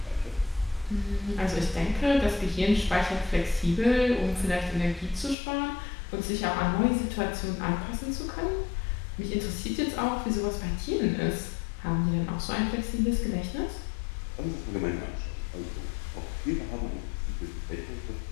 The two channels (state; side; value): drops out; right; at 5.4 s